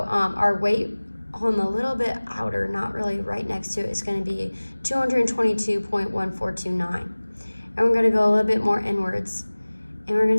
our weight on the little bit outer, not really right next to it, is going to be 222.1429. And we're going to go a little bit more inwards. And we're going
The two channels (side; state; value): both; inverted; correlation -1.00